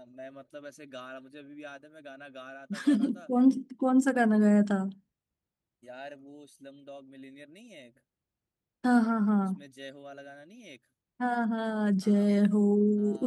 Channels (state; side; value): identical; both; correlation 1.00